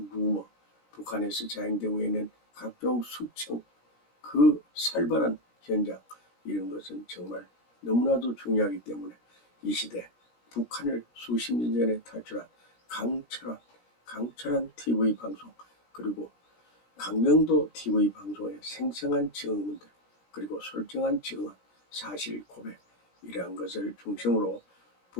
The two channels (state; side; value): late; right; 17 ms